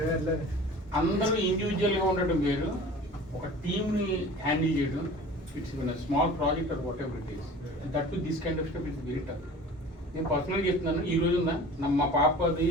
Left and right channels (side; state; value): both; normal; correlation 0.42